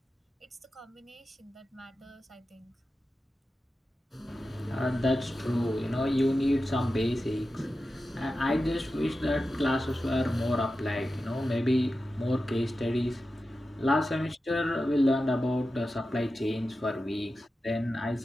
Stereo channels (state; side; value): normal; both; correlation 0.92